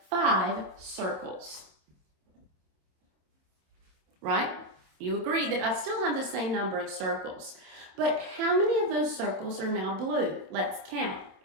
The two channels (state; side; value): late; left; 27 ms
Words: 5 circles. Right? You agree that I still have the same number of circles. But how many of those circles are now blue? Let's count.